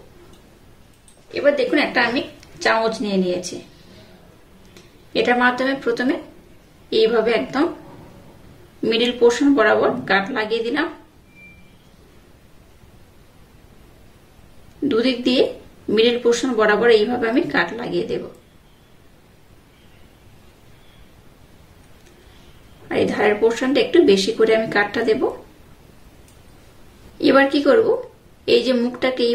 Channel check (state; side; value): identical; both; correlation 1.00